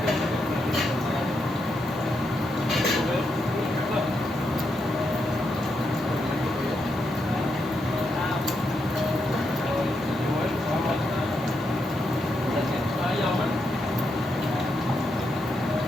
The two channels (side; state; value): left; noise; hiss, 26 dB below the sound